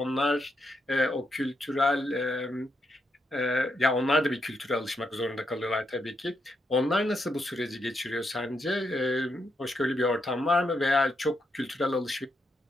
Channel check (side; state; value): both; normal; correlation 0.81